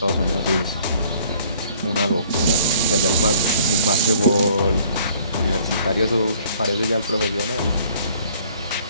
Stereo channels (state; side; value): inverted; both; correlation -0.57